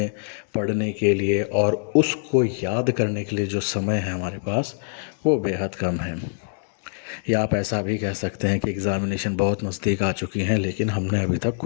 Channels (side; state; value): right; silent; 63 dB below the other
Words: पढ़ने के लिए और उसको याद करने के लिए जो समय है हमारे पास वो बेहद कम है। या आप ऐसा भी कह सकते हैं कि एग्ज़ामिनेशन बहुत नज़दीक आ चुकी हैं लेकिन हमने अभी तक